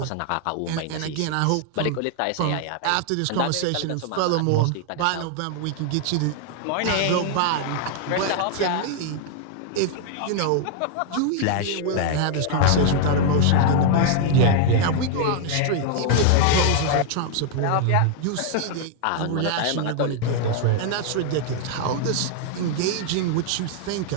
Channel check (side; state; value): both; different; correlation 0.00